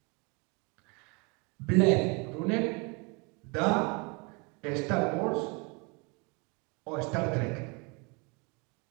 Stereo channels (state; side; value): quieter; left; 30.7 dB